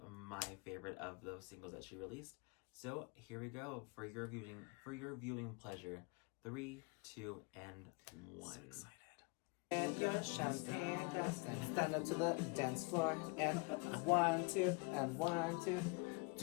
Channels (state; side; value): quieter; right; 30.6 dB